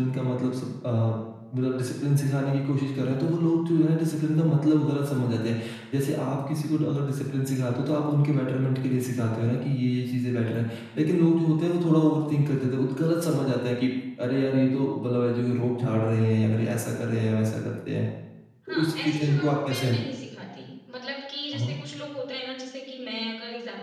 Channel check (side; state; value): both; identical; correlation 1.00